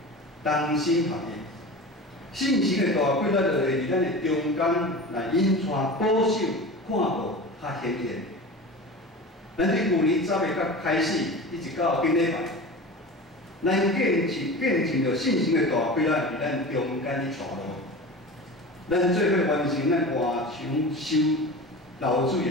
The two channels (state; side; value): normal; both; correlation 0.33